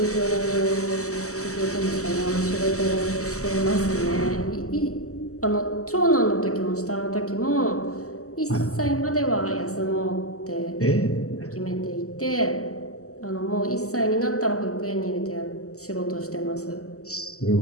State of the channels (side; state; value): right; late; 0.65 ms